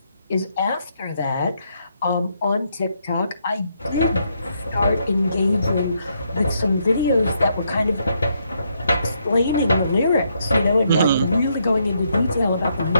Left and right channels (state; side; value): inverted; both; correlation -0.76